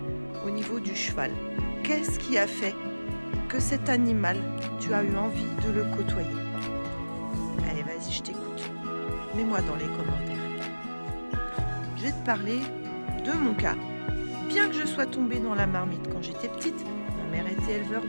au niveau du cheval. Qu'est-ce qui a fait que cet animal, tu as eu envie de le côtoyer? Allez, vas-y, je t'écoute. Mets-moi dans les commentaires. Je vais te parler de mon cas. Bien que je sois tombée dans la marmite quand j'étais petite, ma mère était éleveur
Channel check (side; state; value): both; inverted; correlation -1.00